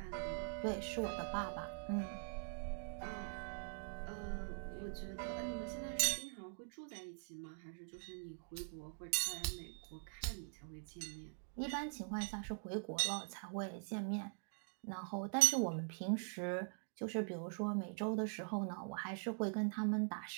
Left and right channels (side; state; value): left; silent; digital silence